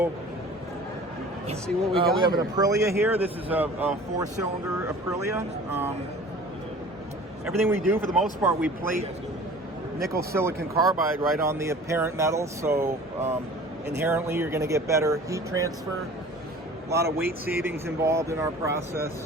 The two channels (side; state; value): both; normal; correlation 0.44